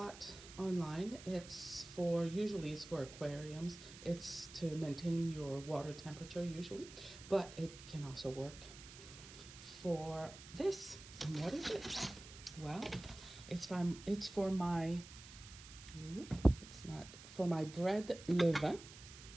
online. Usually it's for aquariums. It's to maintain your water temperature usually, but it can also work for this. And what is it? Well, it's for my bread levain,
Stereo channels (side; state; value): right; noise; hiss, 16 dB below the sound